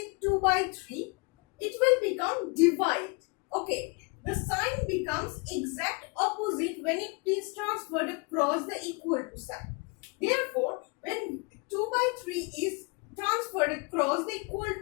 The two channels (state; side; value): quieter; right; 31.6 dB